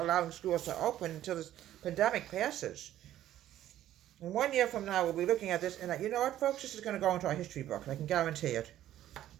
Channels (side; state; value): left; quieter; 12.6 dB